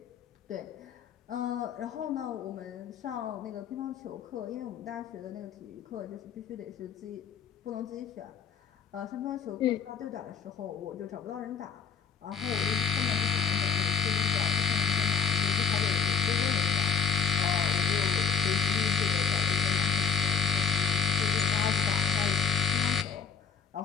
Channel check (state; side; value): quieter; right; 6.2 dB